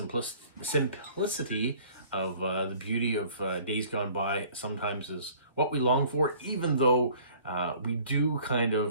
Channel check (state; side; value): inverted; both; correlation -0.52